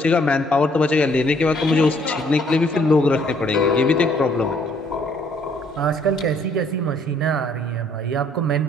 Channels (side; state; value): both; normal; correlation 0.64